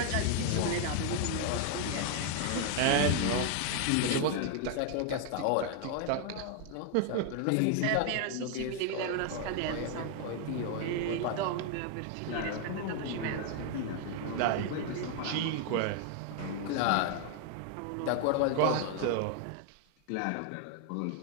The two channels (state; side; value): different; both; correlation 0.00